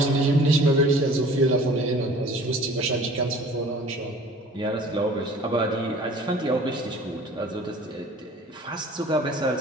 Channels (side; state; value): both; normal; correlation 0.47